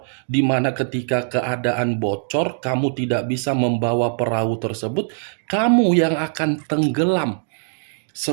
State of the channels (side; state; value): left; silent; digital silence